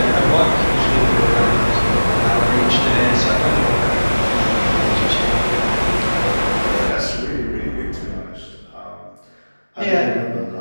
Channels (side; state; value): both; inverted; correlation -1.00